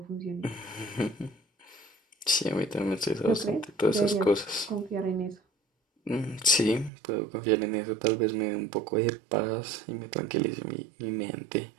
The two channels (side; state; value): left; drops out; at 6.9 s